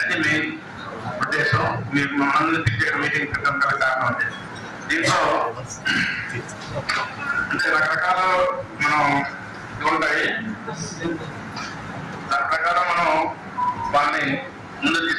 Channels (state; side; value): identical; both; correlation 1.00